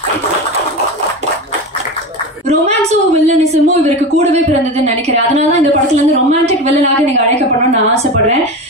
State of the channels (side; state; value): both; normal; correlation 0.24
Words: ரொமான்ஸும் வில்லனிசமும் இவருக்கு கூடவே பிறந்ததுன்னு நினைக்கிறேன். அதனாலதான் இந்த படத்துல இருந்து ரொமான்டிக் வில்லனாக நீங்க அழைக்கப்படணும்னு நான் ஆசைப்படுறேன்.